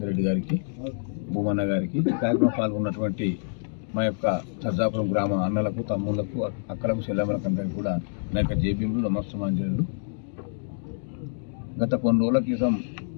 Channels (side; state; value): right; silent; digital silence